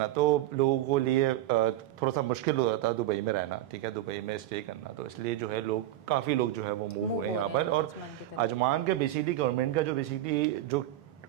तो लोगों को लिए थोड़ा सा मुश्किल हो जाता है दुबई में रहना। ठीक है, दुबई में स्टे करना, तो इसलिए जो है काफ़ी लोग जो है वो मूव हुए यहाँ पर। और अजमान के बेसिकली गवर्नमेंट का जो बेसिकली जो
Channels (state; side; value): quieter; left; 14.0 dB